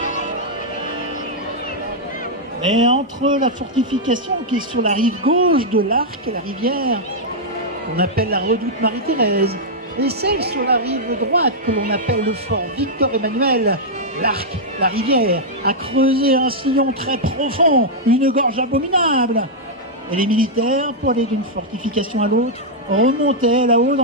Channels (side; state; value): both; normal; correlation -0.06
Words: Mais entre la fortification qui est sur la rive gauche de l'Arc, la rivière, qu'on appelle la redoute Marie-Thérèse, et celle sur la rive droite que l'on appelle le fort Victor-Emmanuel, l'Arc, la rivière, a creusé un sillon très profond, une gorge abominable. Et les militaires, pour aller d'une fortification à l'autre, remontaient là-haut